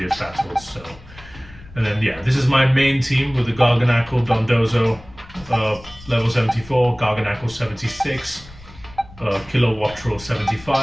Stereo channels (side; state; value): left; noise; rumble, 20 dB below the sound